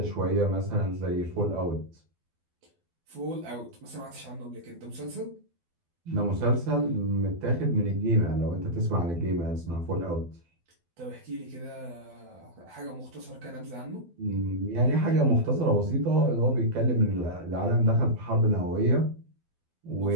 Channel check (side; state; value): left; late; 12 ms